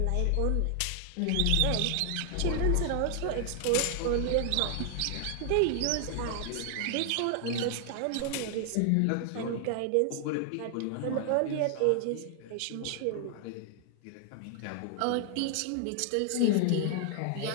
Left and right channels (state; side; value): different; both; correlation 0.00